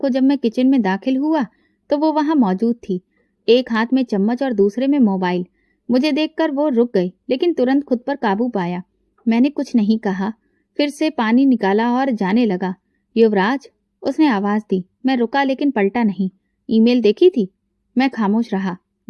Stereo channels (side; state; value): both; identical; correlation 1.00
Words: जब मैं किचन में दाखिल हुआ, तो वो वहां मौजूद थी, एक हाथ में चम्मच और दूसरे में मोबाइल। मुझे देखकर वो रुक गई, लेकिन तुरंत खुद पर काबू पाया। मैंने कुछ नहीं कहा, फिर से पानी निकाला और जाने लगा। युवराज, उसने आवाज दी। मैं रुका, लेकिन पलटा नहीं। ईमेल देखी थी? मैं खामोश रहा।